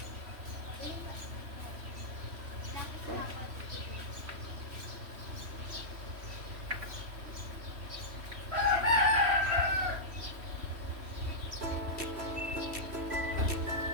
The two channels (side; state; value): left; late; 3.1 ms